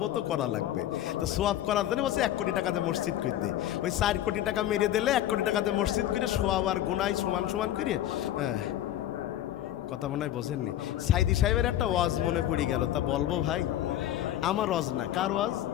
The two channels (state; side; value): quieter; right; 12.6 dB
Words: তো করা লাগবে। তো সোয়াব করার জন্য বলছে 1 কোটি টাকাতে মসজিদ করে দে। ওই 4 কোটি টাকা মেরিয়ে দিলে 1 কোটি টাকাতে মসজিদ করে সোয়াব আর গুনাহ সমান সমান করে। হ্যাঁ, কথা মনে হয় বোঝেননি। সাইদি সাহেবের একটা ওয়াজ মনে পড়ে গেল, তা বলবো ভাই? আমার ওয়াজ না, কার ওয়াজ?